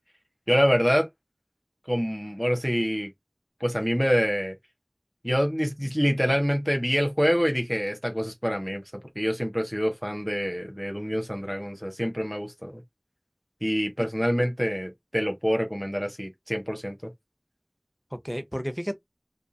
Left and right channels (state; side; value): identical; both; correlation 1.00